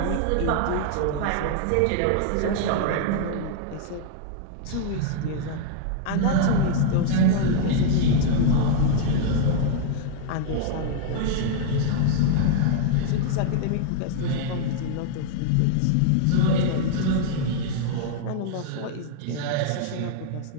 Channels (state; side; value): different; both; correlation 0.00